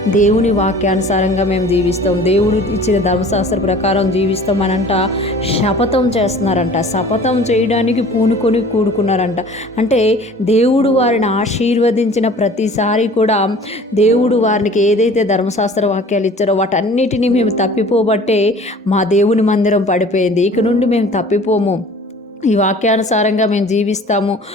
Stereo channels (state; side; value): normal; both; correlation 0.46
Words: దేవుని వాక్యానుసారంగా మేము జీవిస్తాం, దేవుడు ఇచ్చిన ధర్మశాస్త్ర ప్రకారం జీవిస్తాం అనంట శపథం చేస్తున్నారంట. శపథం చేయడానికి పూనుకొని కూడుకున్నారంట. అంటే దేవుడు వారిని ఆశీర్వదించిన ప్రతిసారి కూడా దేవుడు వారికి ఏదైతే ధర్మశాస్త్ర వాక్యాలు ఇచ్చారో వాటన్నిటినీ మేము తప్పిపోబట్టే మా దేవుని మందిరం పడిపోయింది. ఇక నుండి మేము తప్పిపోము, ఈ వాక్యానుసారంగా మేము జీవిస్తాము,